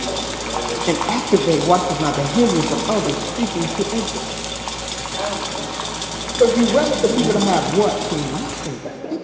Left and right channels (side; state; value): both; identical; correlation 1.00